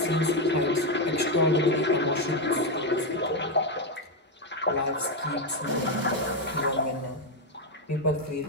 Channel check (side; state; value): both; normal; correlation 0.05